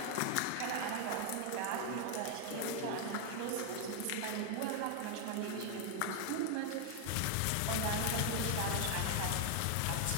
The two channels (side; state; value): both; different; correlation 0.01